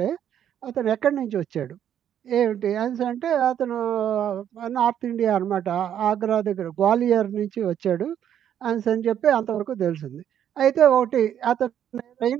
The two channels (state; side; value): quieter; left; 9.8 dB